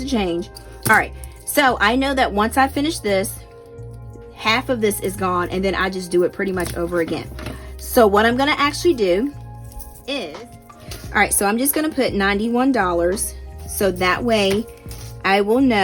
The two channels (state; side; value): identical; both; correlation 1.00